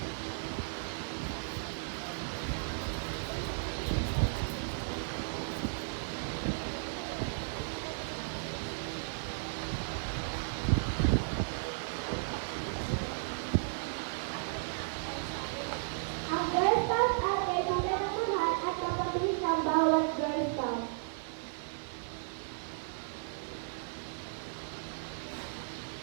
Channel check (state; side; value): silent; left; 55 dB below the other